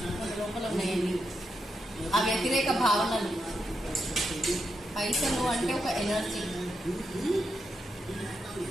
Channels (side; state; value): both; normal; correlation 0.84